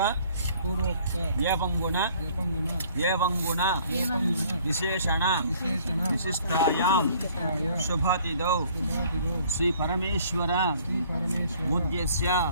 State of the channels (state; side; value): inverted; both; correlation -0.58